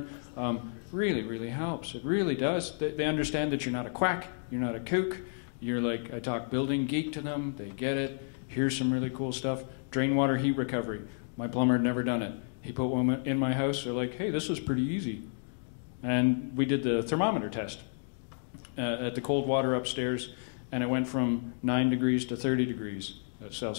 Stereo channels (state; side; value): silent; right; digital silence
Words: really, really helps. It really does. They understand that you're not a quack, you're not a kook. You're like, I talk building geek to them, they get it. Here's some really cool stuff. Drain water heat recovery. My plumber had never done it. He put one in my house. They're like, hey, this was pretty easy. And we did the thermometer test at the cold water upstairs, and it went from 9 degrees to 30 degrees